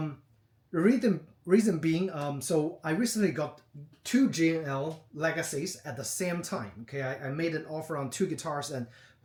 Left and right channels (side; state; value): both; identical; correlation 1.00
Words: reason being, so I recently got two G&L Legacies at the same time. Okay, I made an offer on two guitars, and